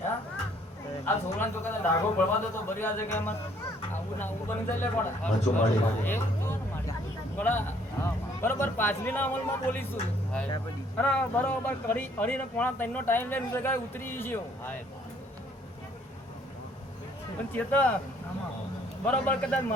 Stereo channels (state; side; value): normal; both; correlation 0.63